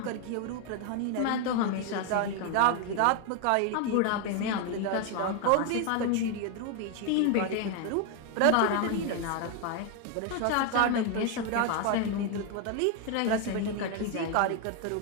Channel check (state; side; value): different; both; correlation 0.01